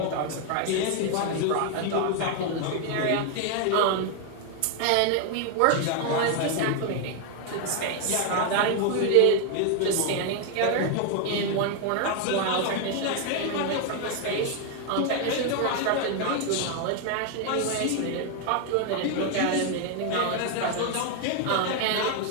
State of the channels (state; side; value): different; both; correlation 0.01